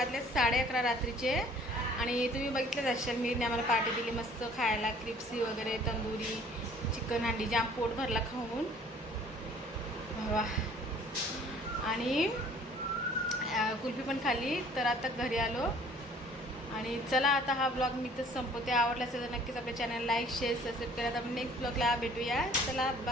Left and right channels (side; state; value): both; normal; correlation 0.54